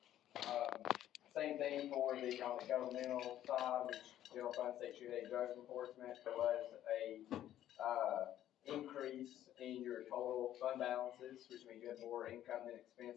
Same thing for on the governmental side, which general fund section 8 drug enforcement, there was a, increase in your total fund balances, which means you have more income than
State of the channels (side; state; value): right; quieter; 12.1 dB